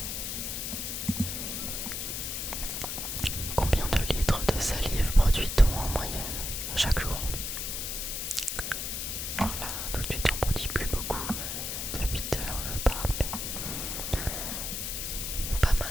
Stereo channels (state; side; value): noise; left; hiss, 3 dB below the sound